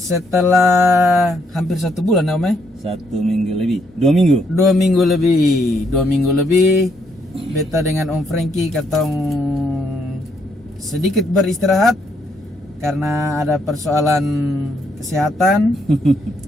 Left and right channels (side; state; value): both; normal; correlation 0.74